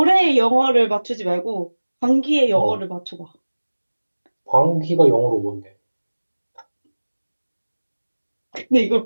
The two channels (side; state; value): both; inverted; correlation -1.00